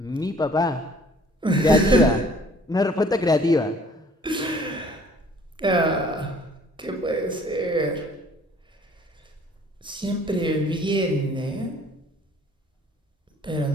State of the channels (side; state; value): both; normal; correlation 0.55